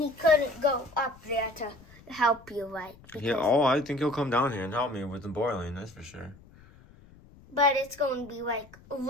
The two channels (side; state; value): left; noise; rumble, 23 dB below the sound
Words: he couldn't go up there to help you, right? Yeah. Oh, I think he'll come down here and help me with the boiling. That's for sure. But it's going to be like